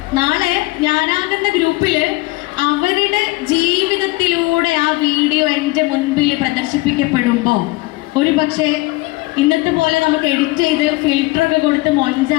നാളെ ഞാനാകുന്ന ഗ്രൂപ്പിൽ അവരുടെ ജീവിതത്തിലൂടെ ആ വീഡിയോ എൻ്റെ മുൻപിൽ പ്രദർശിപ്പിക്കപ്പെടുമ്പോൾ ഒരു പക്ഷേ ഇന്നത്തെ പോലെ നമുക്ക് എഡിറ്റ് ചെയ്ത് ഫിൽറ്ററൊക്കെ കൊടുത്ത്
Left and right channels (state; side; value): quieter; right; 21.4 dB